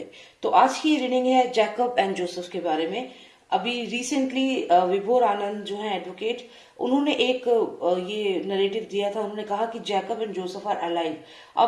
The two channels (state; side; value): identical; both; correlation 1.00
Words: तो आज की रीडिंग है जैकब एंड जोसेफ के बारे में। अभी रिसेंटली विभोर आनंद जो है एडवोकेट, उन्होंने एक ये नरेटिव दिया था। उन्होंने कहा कि Jacob and Joseph are alive.